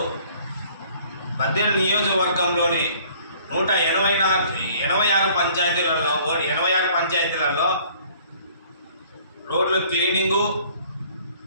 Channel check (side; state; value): both; inverted; correlation -0.56